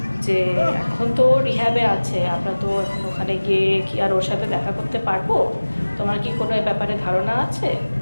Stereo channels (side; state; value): both; inverted; correlation -1.00